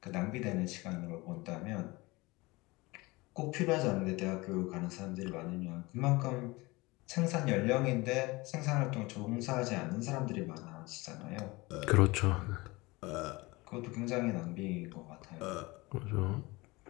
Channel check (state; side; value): quieter; right; 23.0 dB